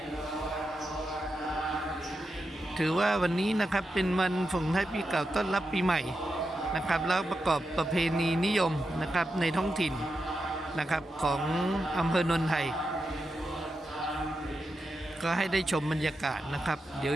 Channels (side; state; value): both; normal; correlation 0.88